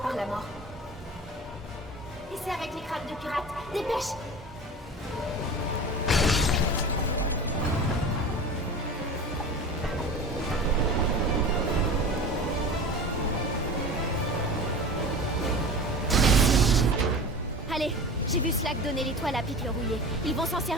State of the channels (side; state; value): both; normal; correlation 0.34